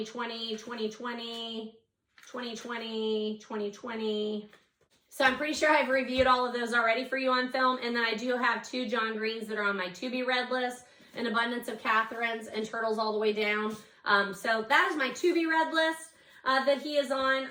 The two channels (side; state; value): both; identical; correlation 1.00